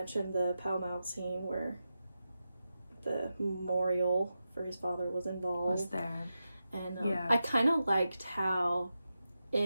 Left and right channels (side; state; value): both; inverted; correlation -0.90